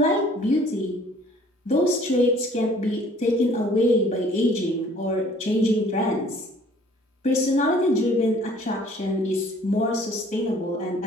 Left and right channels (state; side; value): normal; both; correlation 0.55